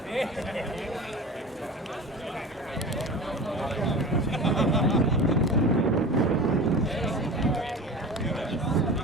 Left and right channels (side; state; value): both; normal; correlation 0.34